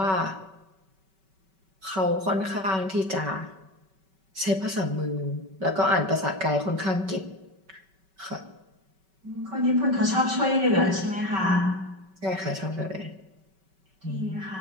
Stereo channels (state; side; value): late; left; 5.2 ms